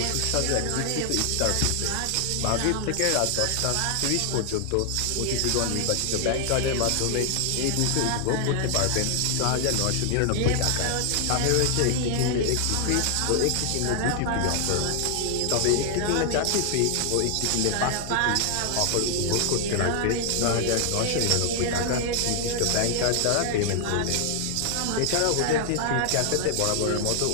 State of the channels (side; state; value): both; different; correlation 0.00